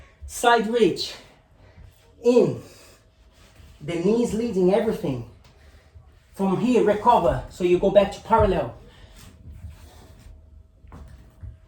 Side reach, in, the knees leading everything. From here, recover, so you go back to parallel.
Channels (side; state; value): both; identical; correlation 1.00